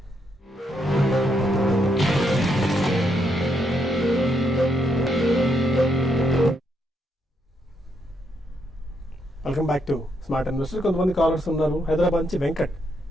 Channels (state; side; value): normal; both; correlation 0.77